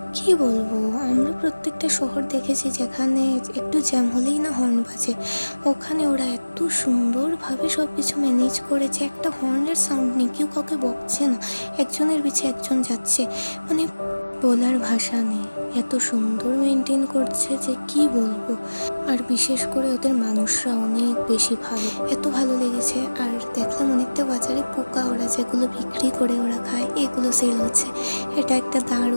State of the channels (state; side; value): inverted; both; correlation -1.00